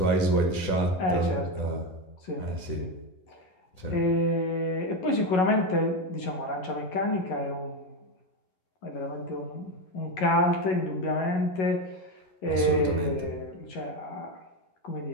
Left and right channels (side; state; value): right; late; 11 ms